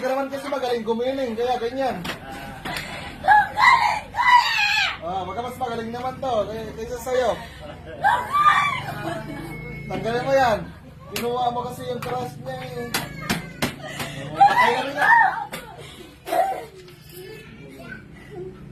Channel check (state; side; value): identical; both; correlation 1.00